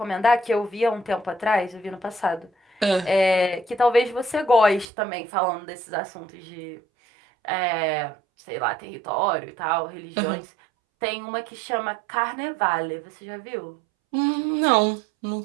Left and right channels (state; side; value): drops out; left; at 4.9 s